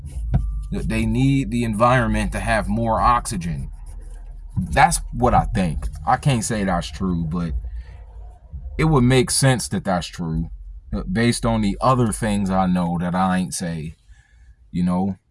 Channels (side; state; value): both; identical; correlation 1.00